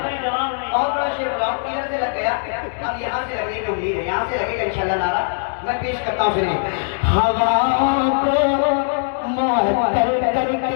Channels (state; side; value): silent; right; digital silence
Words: भाई जवाब नहीं। और बड़ा शेर बनाओ, किधर से लग गया? अब यहाँ से लगने की उम्मीद है, यहाँ से लगेगा इंशाल्लाह नारा। मैं पेश करता हूँ, सुनिए। हवाओं को मुअत्तर करके